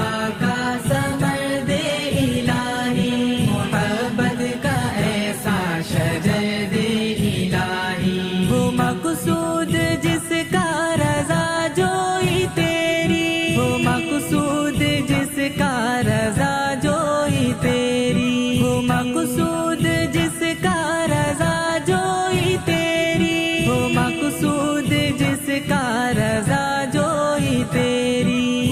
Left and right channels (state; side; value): identical; both; correlation 1.00